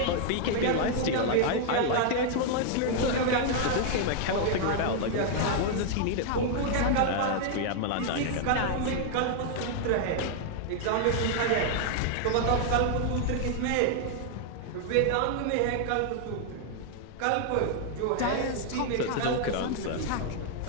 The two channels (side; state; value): both; different; correlation 0.00